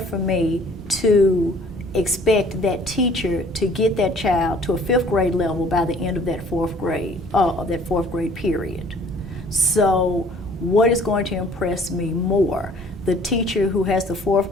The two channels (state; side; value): normal; both; correlation 0.54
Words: me to expect that teacher to get that child to a fifth grade level by the end of that fourth grade period? So what is going to impress me more? The teacher who has the fourth